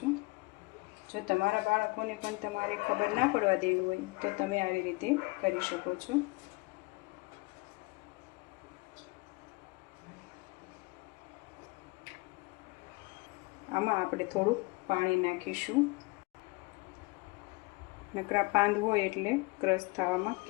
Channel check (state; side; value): quieter; right; 25.6 dB